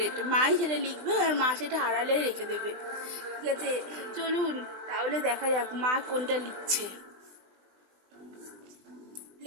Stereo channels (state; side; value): late; left; 20 ms